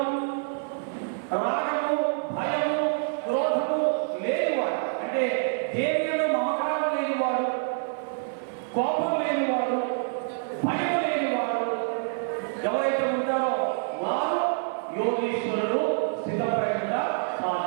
రాగము భయము క్రోధము లేనివాడు, అంటే దేనిలో మమకారం లేనివాడు, కోపం లేనివాడు, భయం లేనివాడు ఎవరైతే ఉంటారో వారు యోగీశ్వరుడు స్థితప్రజ్ఞగా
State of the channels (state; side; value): silent; left; 58 dB below the other